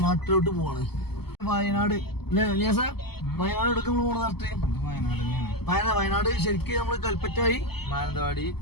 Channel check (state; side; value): late; right; 0.96 ms